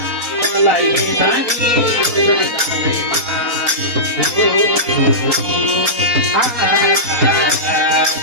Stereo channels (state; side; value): late; left; 4.2 ms